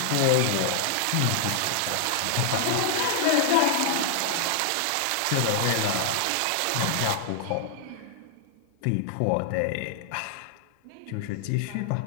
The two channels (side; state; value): both; different; correlation 0.00